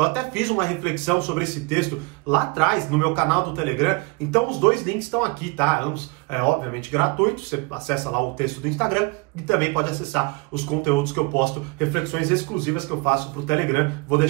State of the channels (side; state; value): left; quieter; 26.6 dB